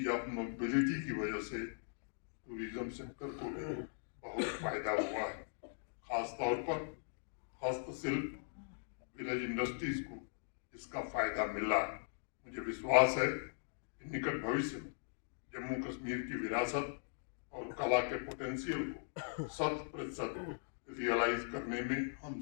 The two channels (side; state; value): right; silent; digital silence